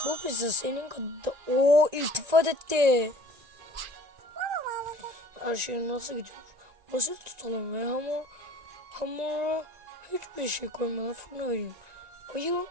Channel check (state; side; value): late; left; 1.9 ms